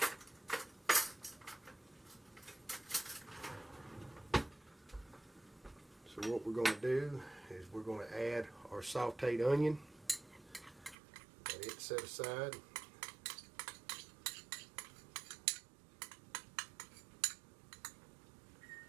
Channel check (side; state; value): left; drops out; at 11.0 s